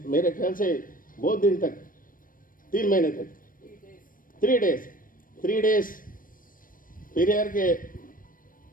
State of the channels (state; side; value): late; right; 0.40 ms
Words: मेरे ख्याल से बहुत दिन तक, 3 महीने तक, 3 डेज पेरियार के